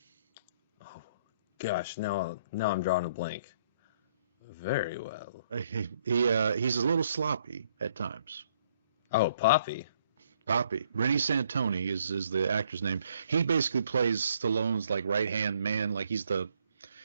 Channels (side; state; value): both; inverted; correlation -0.66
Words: Oh, gosh, now I'm drawing a blank. Very well. He's a little sloppy at times. Oh, Poppy. Poppy. Rennie Santoni is the actor's name. He basically plays Stallone's like right hand man, like he's kind of